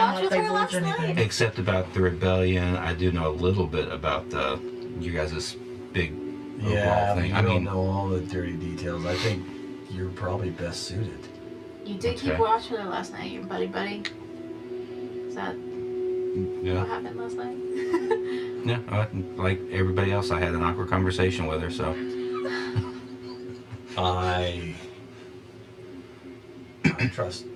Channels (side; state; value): both; identical; correlation 1.00